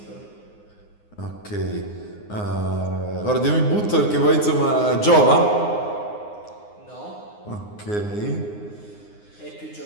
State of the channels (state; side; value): late; right; 9.7 ms